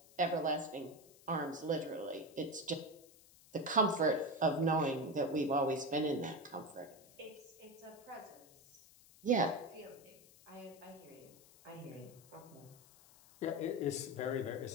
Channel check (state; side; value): noise; left; hiss, 24 dB below the sound